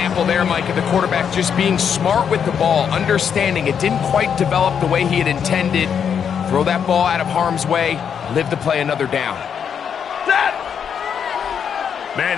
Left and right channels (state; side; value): quieter; right; 7.6 dB